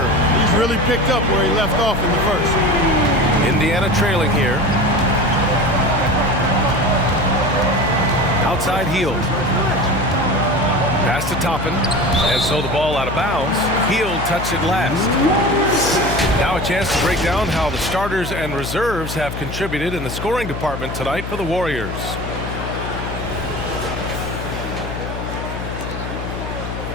He's really picked up where he left off in the first. Indiana trailing here. Outside Hield. Pass to Toppin. And so the ball out of bounds. Hield touched it last. Now a chance to break down how the starters and reserves have contributed in the scoring department tonight for the Warriors.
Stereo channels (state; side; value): noise; left; hum, 7 dB below the sound